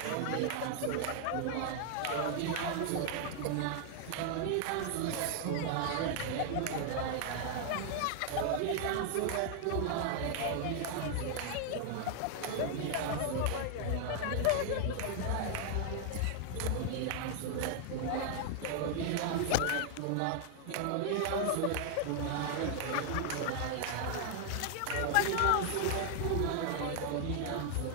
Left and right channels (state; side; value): different; both; correlation 0.00